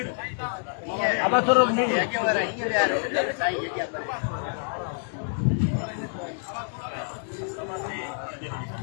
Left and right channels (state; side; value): silent; right; digital silence